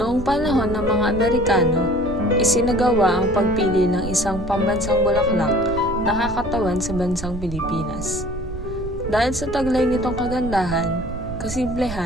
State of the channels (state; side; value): noise; right; rumble, 10 dB below the sound